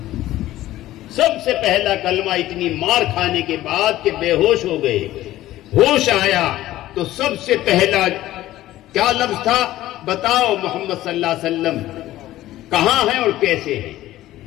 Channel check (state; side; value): quieter; right; 15.0 dB